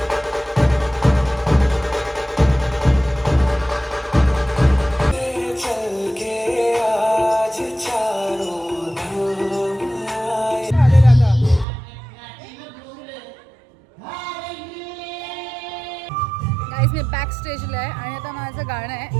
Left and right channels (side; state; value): left; drops out; at 11.7 s